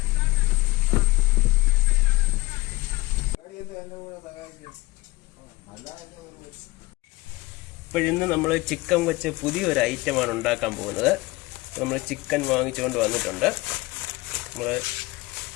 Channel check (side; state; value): right; quieter; 21.1 dB